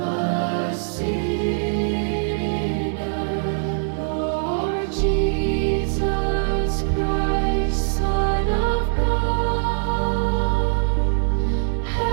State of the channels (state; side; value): silent; left; digital silence